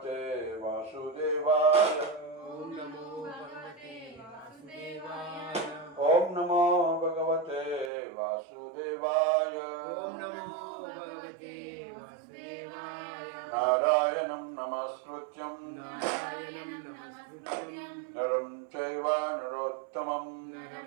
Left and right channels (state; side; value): drops out; left; at 7.9 s